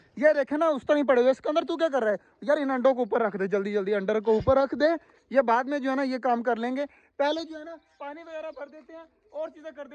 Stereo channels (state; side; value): identical; both; correlation 1.00